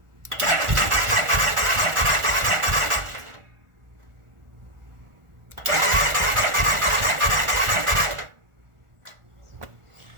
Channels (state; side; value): late; left; 1.4 ms